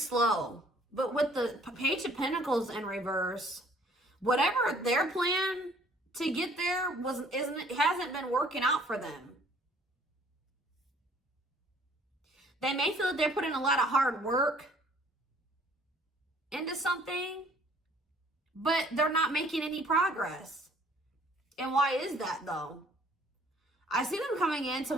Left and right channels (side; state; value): both; normal; correlation 0.58